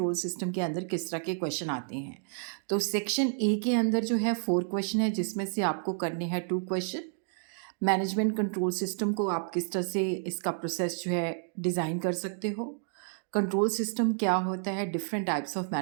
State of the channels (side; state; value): left; silent; digital silence